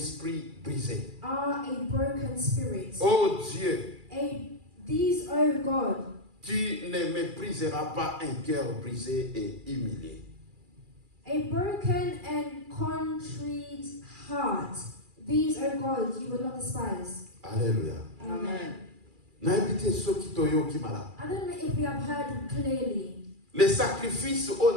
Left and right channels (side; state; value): left; late; 2.4 ms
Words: brisé. are a broken spirit. Oh Dieu, These, oh God, tu ne mépriseras pas un cœur brisé et humilié. a broken and contrite heart. These, oh God, you will not despise. Alléluia. Amen. Naibite soki toyoki mala. I don't know if we have heard clearly. Les sacrifices o